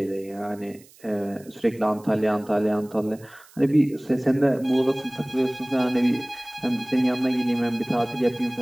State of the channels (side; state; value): right; noise; hiss, 25 dB below the sound